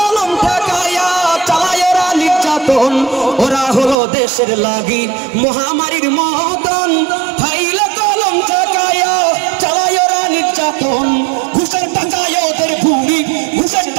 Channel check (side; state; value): left; drops out; at 4.0 s